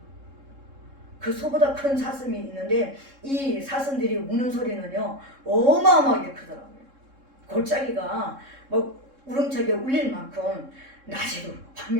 그 소보다 큰 사슴이 있는데 이 사슴들이 우는 소리는요 어마어마하게 크더라고요. 골짜기가 뭐 우렁차게 울릴 만큼 낮에도 울고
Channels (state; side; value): late; left; 3.7 ms